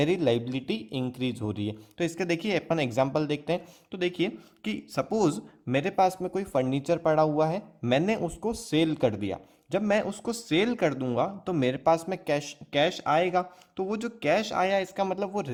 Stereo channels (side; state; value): both; identical; correlation 1.00